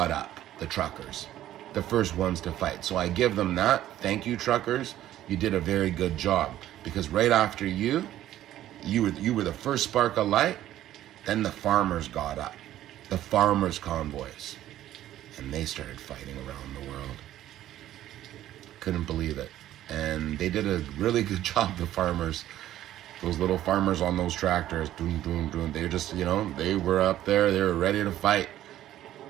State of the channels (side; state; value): left; quieter; 13.0 dB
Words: up, the truckers, the first ones to fight. So I give them that. Thank you, truckers. You did a very good job. Because right after you were the first spark of light. Then the farmers got up, the farmers' convoys, and they started fighting around the world. Couldn't believe it. And they did a really good job, the farmers, those little farmers on those tractors, doom, doom, doom. They just, they were up there, they were ready to fight